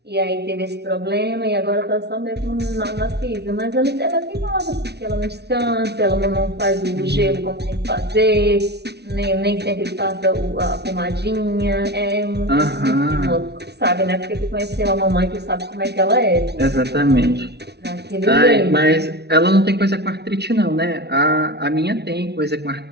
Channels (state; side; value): late; left; 0.49 ms